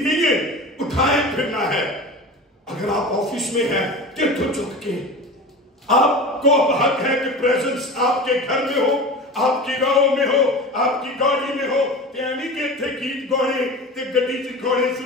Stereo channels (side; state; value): both; normal; correlation 0.32